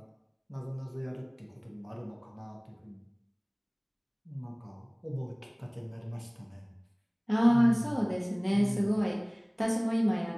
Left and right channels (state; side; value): identical; both; correlation 1.00